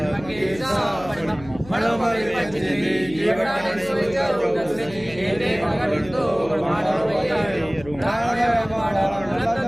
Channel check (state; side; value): noise; left; hum, 17 dB below the sound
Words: के सापन मनोमय पंचदेवी जीवनाने सोचरो दस्य हेरे भगवतो ब्रह्मांड वैयारो रावण माणा